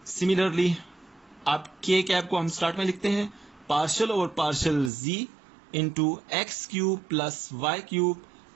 Similarly अब के कैप को हम स्टार्ट में लिखते हैं, पार्शियल और partial z into x cube plus y cube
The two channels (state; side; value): drops out; left; at 4.9 s